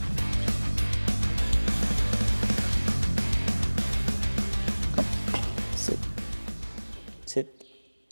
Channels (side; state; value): both; inverted; correlation -1.00